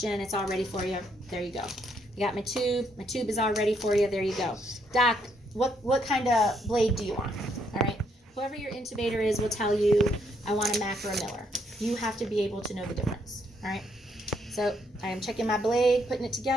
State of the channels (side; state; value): both; normal; correlation 0.73